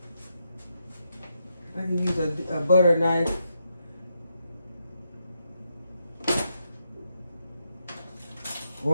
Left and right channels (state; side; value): inverted; both; correlation -0.82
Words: I can use a butter knife.